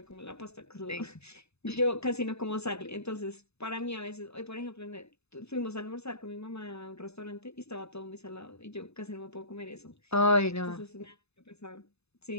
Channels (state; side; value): late; right; 0.80 ms